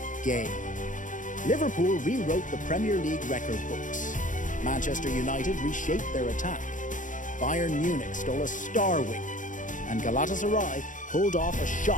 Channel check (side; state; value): right; late; 0.37 ms